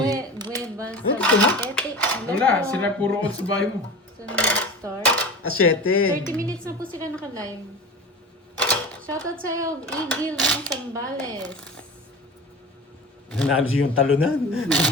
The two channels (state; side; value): normal; both; correlation 0.33